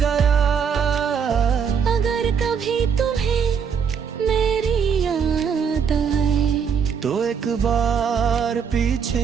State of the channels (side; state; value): left; quieter; 6.8 dB